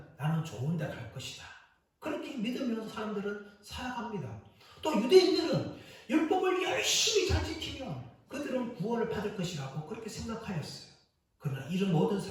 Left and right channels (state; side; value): identical; both; correlation 1.00